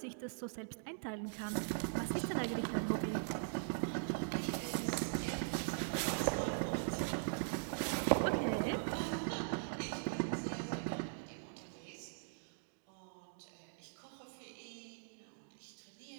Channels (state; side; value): silent; left; digital silence